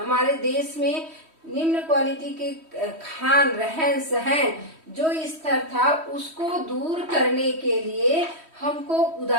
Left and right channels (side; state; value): left; late; 3.1 ms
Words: देश में निम्न क्वालिटी के खान रहन सहन जो स्तर था उसको दूर करने के लिए हमको